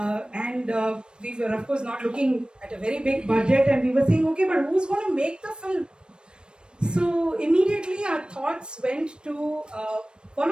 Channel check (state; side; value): late; left; 0.053 ms